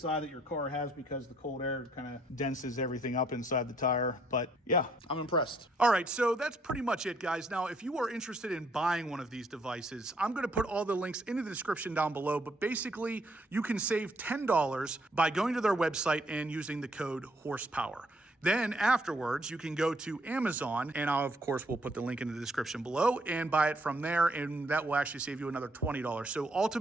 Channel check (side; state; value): both; normal; correlation 0.70